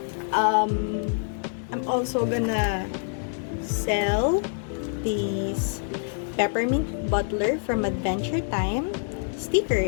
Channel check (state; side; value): silent; right; digital silence